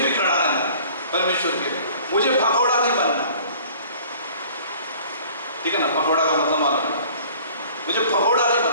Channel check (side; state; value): both; inverted; correlation -0.50